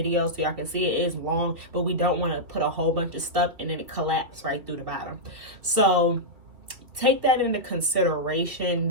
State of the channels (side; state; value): left; late; 2.8 ms